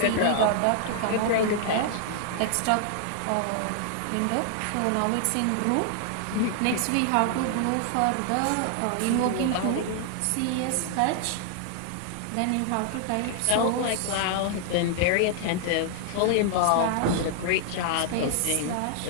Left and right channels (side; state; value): both; different; correlation 0.00